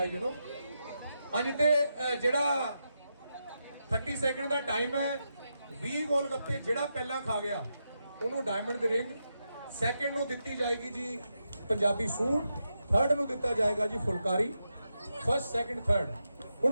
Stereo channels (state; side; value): inverted; both; correlation -0.86